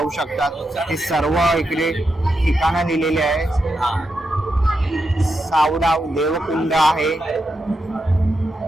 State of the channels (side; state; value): both; normal; correlation 0.85